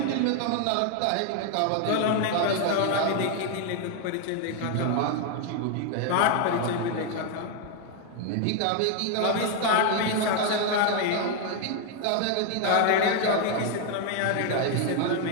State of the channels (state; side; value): different; both; correlation 0.01